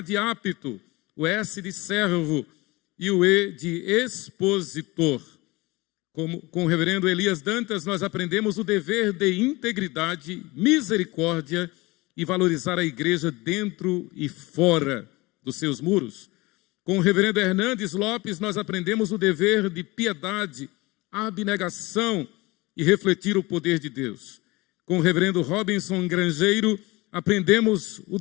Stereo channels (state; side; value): quieter; right; 22.6 dB